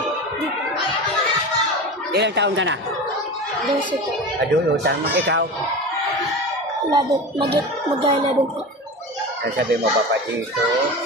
Ilang taon ka na? 12 po. Adulo, tama. Ikaw? Mag-11 po. Sabi mo, Papa Dito,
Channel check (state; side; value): normal; both; correlation 0.28